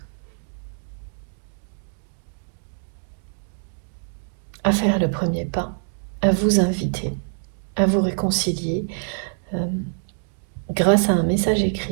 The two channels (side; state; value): left; silent; digital silence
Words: à faire le premier pas, à vous inviter, à vous réconcilier grâce à un message